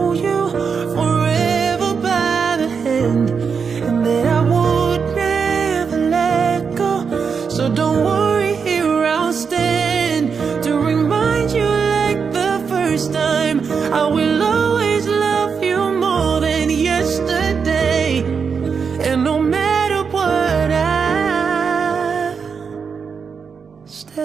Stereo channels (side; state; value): left; quieter; 6.0 dB